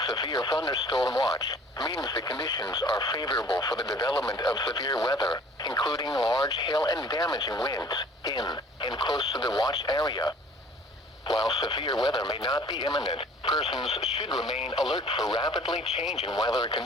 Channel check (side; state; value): both; normal; correlation 0.51